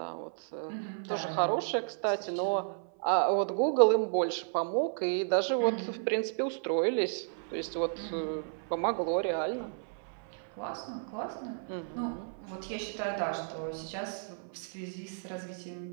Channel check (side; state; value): left; silent; 56 dB below the other